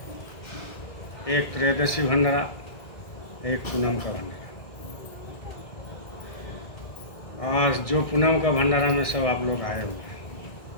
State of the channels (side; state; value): right; late; 1.6 ms